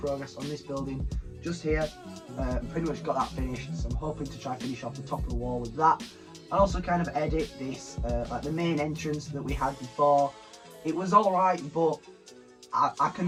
on this building just here, pretty much got that finished. So I'm hoping to try finish off the top of the wall with that, and also kind of edit this, like the main entrance that we had before. It was alright, but I can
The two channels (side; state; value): both; identical; correlation 1.00